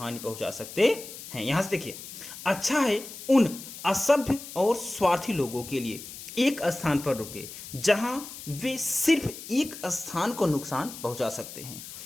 पहुंचा सकते हैं। यहां से देखिए, अच्छा है उन असभ्य और स्वार्थी लोगों के लिए एक स्थान पर रुके जहां वे सिर्फ एक स्थान को नुकसान पहुंचा सकते हैं।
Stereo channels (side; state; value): left; noise; hiss, 12 dB below the sound